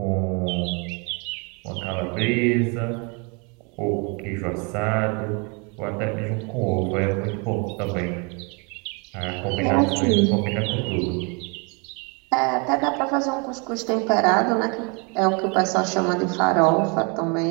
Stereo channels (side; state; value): left; quieter; 32.9 dB